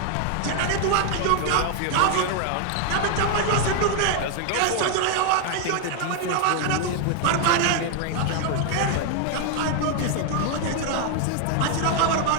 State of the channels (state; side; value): different; both; correlation 0.00